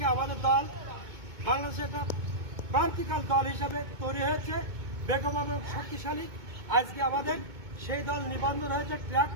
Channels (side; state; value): left; late; 2.2 ms